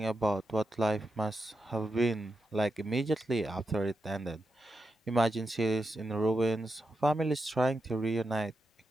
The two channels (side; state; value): both; normal; correlation 0.87